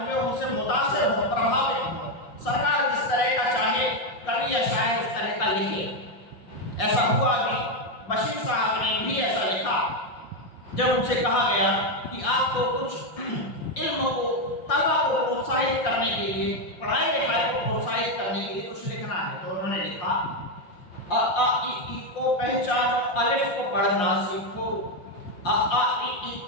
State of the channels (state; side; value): late; right; 5.6 ms